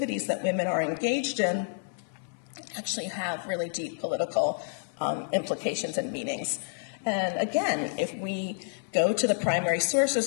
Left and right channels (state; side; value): silent; right; 58 dB below the other